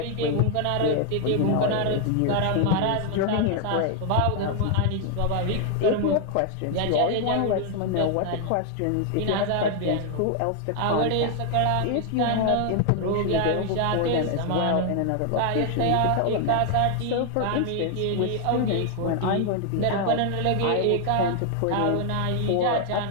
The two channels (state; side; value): different; both; correlation 0.00